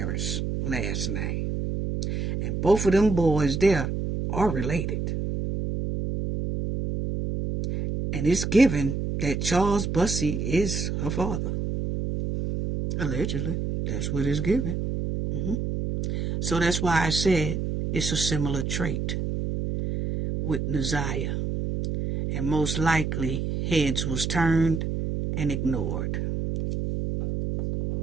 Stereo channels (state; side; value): noise; right; hum, 2 dB below the sound